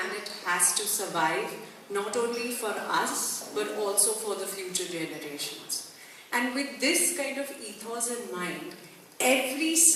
has to survive not only for us but also for the future generations. And with this kind of ethos in mind, every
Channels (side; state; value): both; identical; correlation 1.00